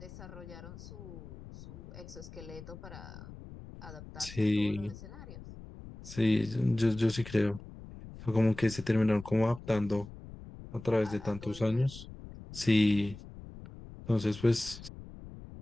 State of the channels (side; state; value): left; noise; rumble, 15 dB below the sound